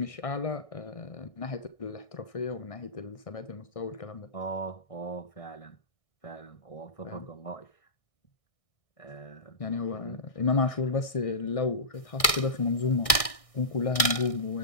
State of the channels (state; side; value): late; right; 1.6 ms